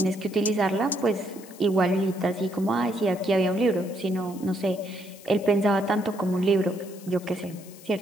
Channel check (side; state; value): left; noise; hiss, 20 dB below the sound